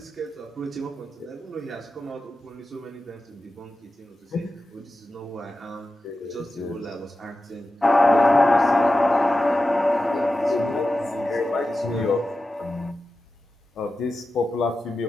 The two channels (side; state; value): both; normal; correlation 0.92